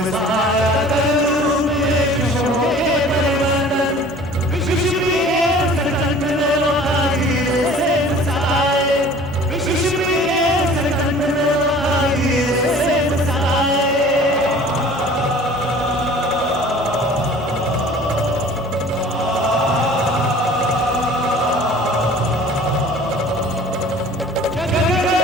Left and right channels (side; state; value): both; normal; correlation 0.47